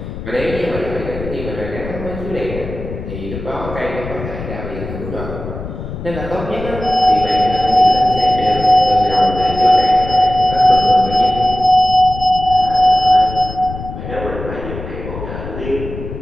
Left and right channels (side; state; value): left; noise; rumble, 9 dB below the sound